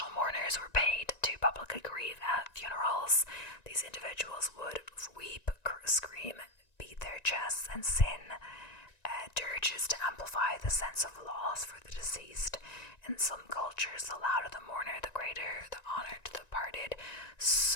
mourners were paid to publicly grieve at funerals. These individuals would weep, scream, beat their chests, and sing dirges to amplify the sense of loss for the deceased. In some cultures, the louder the mourner, the greater the honor to the departed.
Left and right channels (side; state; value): right; late; 1.9 ms